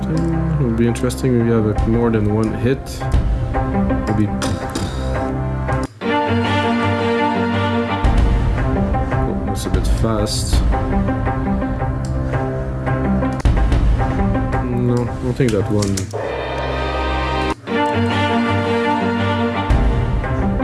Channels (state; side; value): identical; both; correlation 1.00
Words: It would be interesting if you have more than one hit. Maybe. Oh, that's a bit fast. No, I don't think that one.